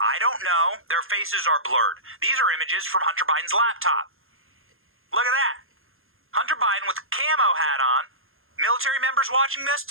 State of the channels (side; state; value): left; late; 0.60 ms